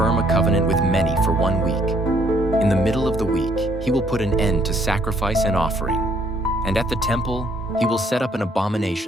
a covenant with many for 1 week. In the middle of the week, he will put an end to sacrifice and offering. And at the temple, he will set up an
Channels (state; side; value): normal; both; correlation 0.66